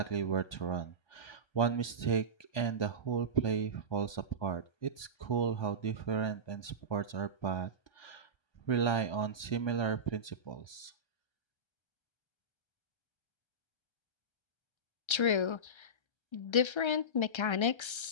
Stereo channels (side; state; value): right; late; 1.3 ms